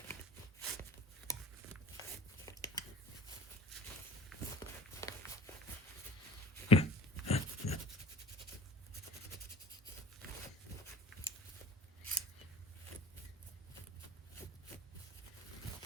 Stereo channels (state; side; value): normal; both; correlation 0.44